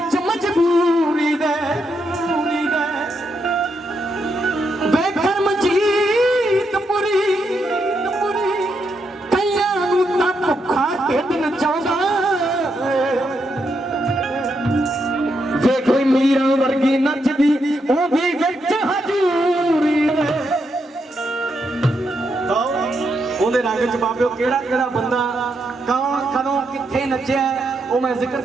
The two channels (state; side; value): normal; both; correlation 0.81